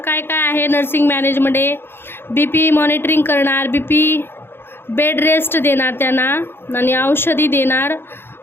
आहे नर्सिंग मॅनेजमध्ये, BP मॉनिटरिंग करणार, बेड रेस्ट देणार त्यांना आणि औषधी देणार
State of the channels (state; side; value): late; right; 0.11 ms